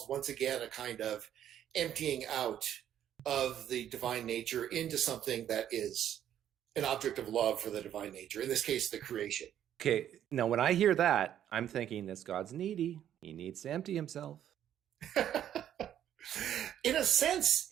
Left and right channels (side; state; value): left; quieter; 10.6 dB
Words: once again, a kind of emptying out of the divine nature into something that is an object of love for the divine nature, in this case, the creation. Okay, now when I hear that, I'm thinking this God's needy. He needs to empty himself. In a